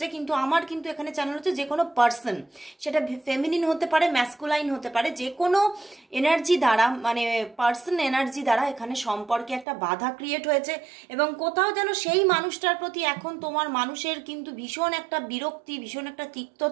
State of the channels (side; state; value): left; drops out; at 9.7 s